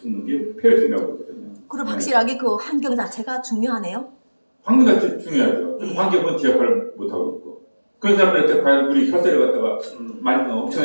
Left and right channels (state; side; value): inverted; both; correlation -1.00